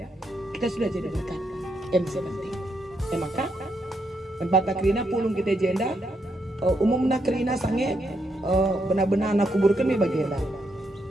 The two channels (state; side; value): normal; both; correlation 0.79